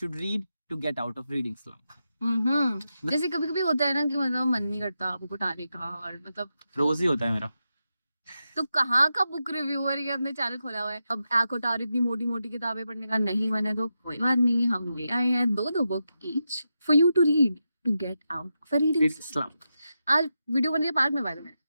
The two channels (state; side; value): inverted; both; correlation -0.88